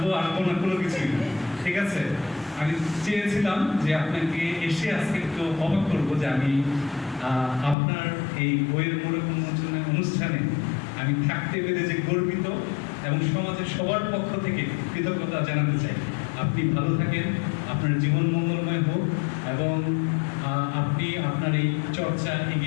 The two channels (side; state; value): right; drops out; at 7.8 s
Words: না, কোনো কিছুই না, ঠিক আছে। আমি চেয়েছিলাম যে আপনাকে এসে আজকে একটু অবাক করবো যে আমি আপনার এই বইয়ের মোড়ক উন্মোচনের অনুষ্ঠানে আমি থাকতে পেরে যে গর্বিত এবং সমাজের সবার পক্ষ থেকে কৃতজ্ঞতা জানাতে চাই। আপনি ভালো থাকেন, আপনার জীবন মঙ্গলময় হোক এবং আপনি আপনার এই চর্চা